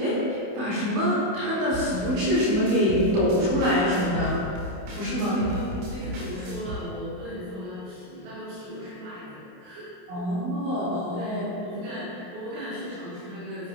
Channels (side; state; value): left; late; 28 ms